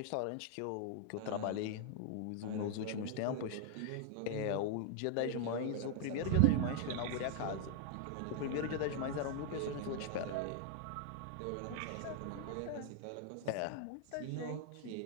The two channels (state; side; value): different; both; correlation 0.00